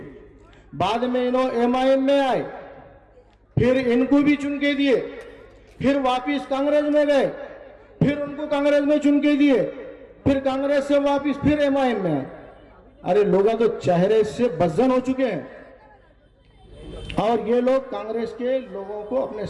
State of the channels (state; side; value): identical; both; correlation 1.00